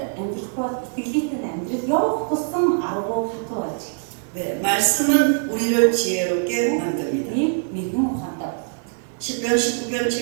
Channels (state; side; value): silent; left; 59 dB below the other